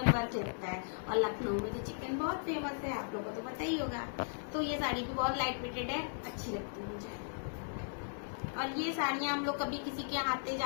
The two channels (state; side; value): silent; right; digital silence